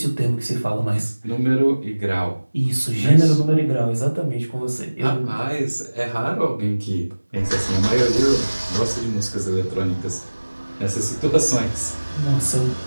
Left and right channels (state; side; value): inverted; both; correlation -1.00